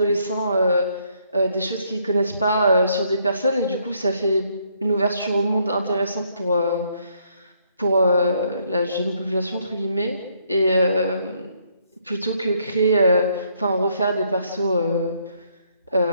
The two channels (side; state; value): both; inverted; correlation -0.71